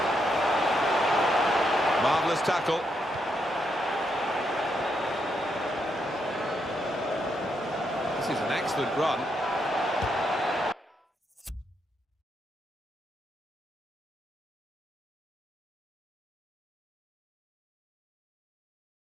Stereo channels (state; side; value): normal; both; correlation 0.79